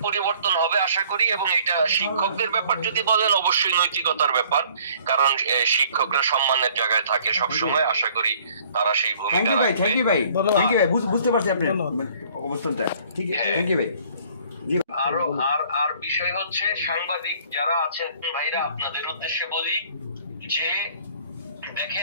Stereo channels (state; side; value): inverted; both; correlation -0.56